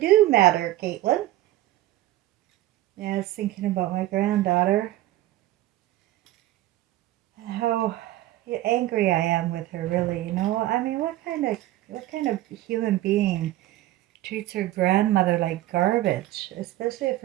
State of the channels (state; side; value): quieter; left; 15.4 dB